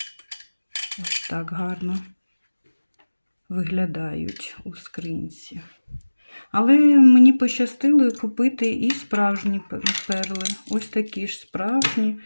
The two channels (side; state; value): both; inverted; correlation -1.00